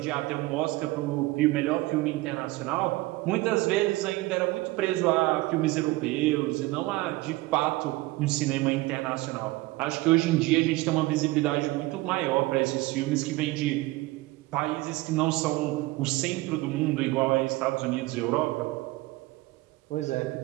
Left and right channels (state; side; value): quieter; left; 20.0 dB